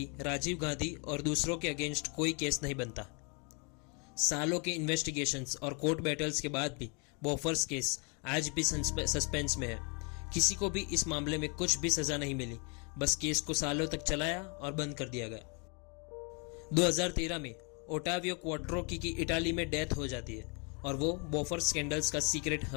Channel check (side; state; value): right; quieter; 34.5 dB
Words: राजीव गांधी और दूसरों के अगेंस्ट कोई केस नहीं बनता। सालों के इन्वेस्टिगेशंस और कोर्ट बैटल्स के बाद भी बोफोर्स केस आज भी सस्पेंस में है। किसी को भी इस मामले में कुछ भी सजा नहीं मिली, बस केस को सालों तक चलाया और बंद कर दिया गया। 2013 में ओटावियो क्वाट्रोकी की इटाली में डेथ हो जाती है और वो बोफोर्स स्कैंडल्स का सीक्रेट